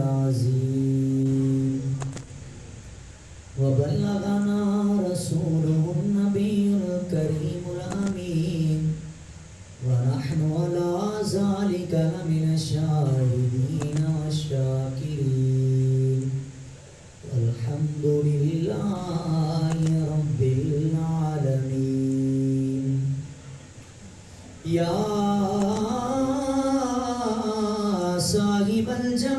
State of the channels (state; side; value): identical; both; correlation 1.00